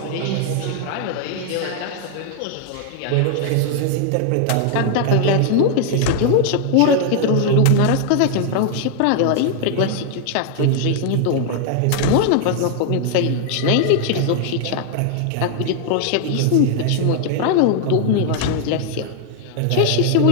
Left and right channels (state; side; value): different; both; correlation 0.00